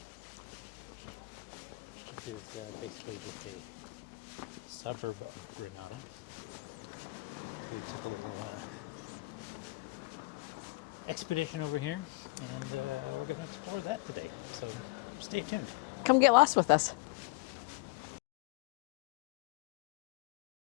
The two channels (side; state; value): right; quieter; 24.8 dB